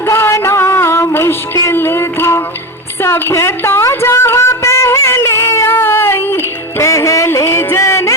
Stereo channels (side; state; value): both; normal; correlation 0.20